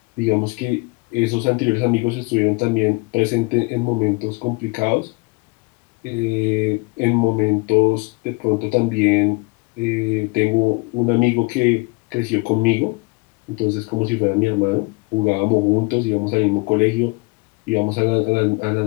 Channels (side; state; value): right; quieter; 27.9 dB